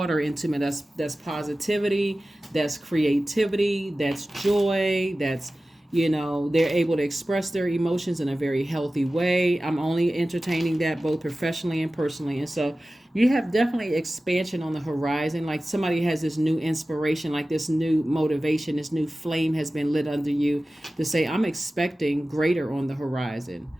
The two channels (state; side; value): normal; both; correlation 0.96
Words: into me. That's positivity, that's creativity, that's joy, that's, you know, they're able to express their emotions in a very healthy way. I'm only entertaining that both professionally and personally. And so you have definitely expansion on the horizon. Like somebody has this new inspiration, like this new motivation, this new flame has been lit under you to say, I'm expecting greater on the horizon.